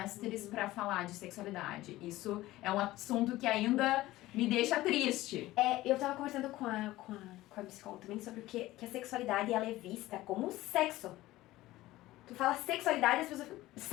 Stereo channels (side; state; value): right; quieter; 17.0 dB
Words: para falar de sexualidade. Isso é um assunto que ainda me deixa triste. Eu tava conversando com a psicóloga também sobre que a sexualidade ela é vista como sexo. Tu fala sexualidade e as pessoas falam,